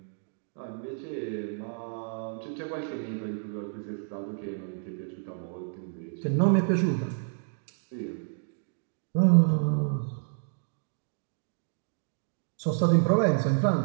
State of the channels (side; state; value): left; silent; digital silence